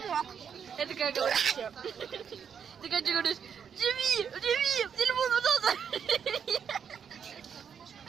Это как говоришь все. Ты как говоришь, живи, телефон, пожалуйста.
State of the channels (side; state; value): left; quieter; 7.4 dB